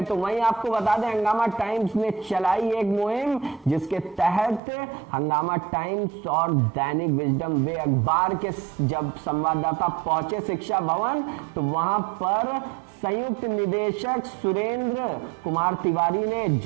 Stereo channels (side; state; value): left; drops out; at 4.6 s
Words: तो वहीं आपको बता दें, हंगामा टाइम्स ने चलाई एक मुहिम जिसके तहत हंगामा टाइम्स और दैनिक विजडम वे अखबार के जब संवाददाता पहुंचे शिक्षा भवन तो वहां पर संयुक्त निदेशक सुरेंद्र कुमार तिवारी ने